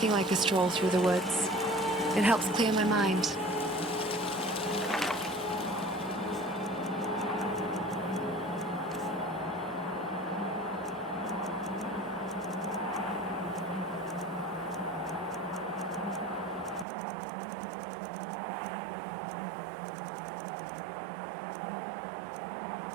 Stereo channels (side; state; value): left; drops out; at 16.9 s